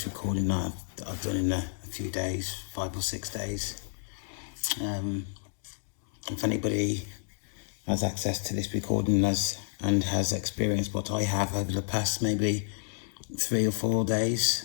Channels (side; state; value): right; silent; digital silence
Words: recording that I've done in a few days, 5 or 6 days. If anybody has access to this recording and has experienced what I have over the past maybe 3 or 4 days,